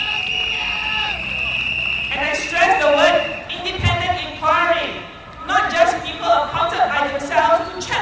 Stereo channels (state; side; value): identical; both; correlation 1.00